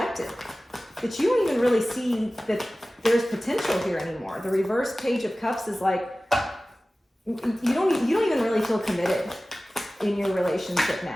that you don't even really see that there's potential here anymore. The reverse Page of Cups is like, you don't even really feel committed in your relationship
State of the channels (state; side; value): normal; both; correlation 0.97